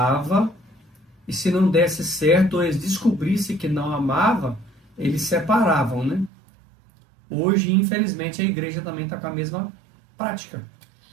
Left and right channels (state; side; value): drops out; left; at 6.3 s